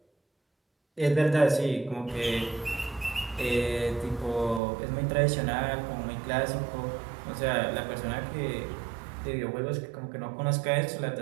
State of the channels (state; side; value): drops out; left; at 4.6 s